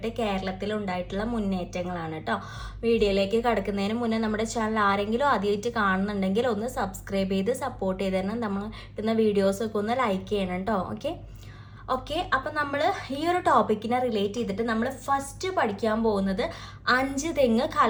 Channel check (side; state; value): both; identical; correlation 1.00